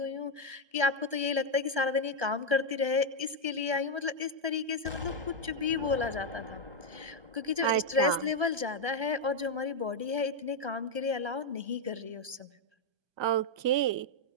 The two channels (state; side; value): late; left; 1.2 ms